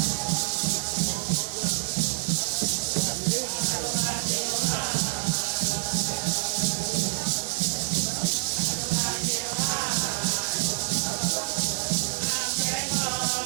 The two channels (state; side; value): silent; left; digital silence